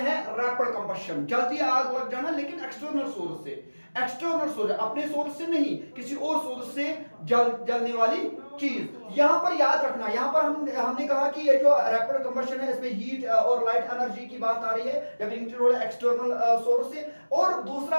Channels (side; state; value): both; inverted; correlation -1.00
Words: रैपिड कंबशन, जल्दी आग लग जाना लेकिन एक्सटर्नल सोर्स से, एक्सटर्नल सोर्स अपने सोर्स से नहीं, किसी और सोर्स से जलने वाली चीज। यहां पर याद रखना, यहां पर हमने कहा कि ये जो रैपिड कंबशन है इसमें हीट और लाइट एनर्जी की बात आ रही है जब इंक्लूड एक्सटर्नल सोर्स से, और